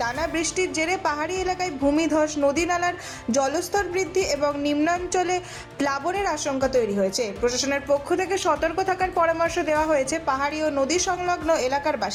বৃষ্টির জেরে পাহাড়ি এলাকায় ভূমিধস, নদী নালার জলস্তর বৃদ্ধি এবং নিম্নাঞ্চলে প্লাবনের আশঙ্কা তৈরি হয়েছে। প্রশাসনের পক্ষ থেকে সতর্ক থাকার পরামর্শ দেওয়া হয়েছে পাহাড়ি ও নদী সংলগ্ন এলাকার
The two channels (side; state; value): both; identical; correlation 1.00